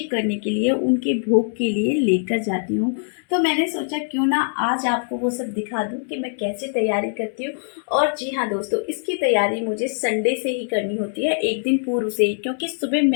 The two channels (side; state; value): right; silent; 64 dB below the other